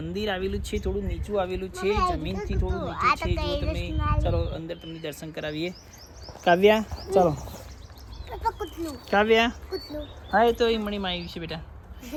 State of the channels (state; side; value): identical; both; correlation 1.00